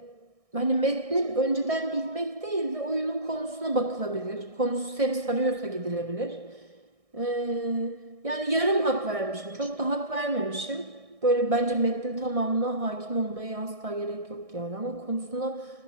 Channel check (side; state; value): left; late; 1.6 ms